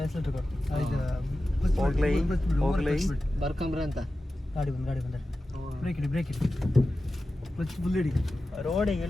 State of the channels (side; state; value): both; normal; correlation 0.94